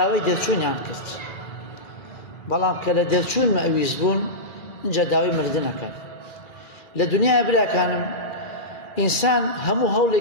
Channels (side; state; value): right; late; 2.3 ms